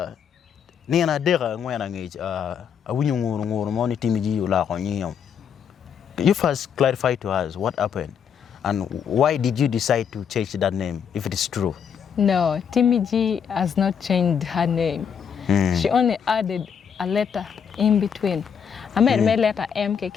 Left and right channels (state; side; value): quieter; right; 7.5 dB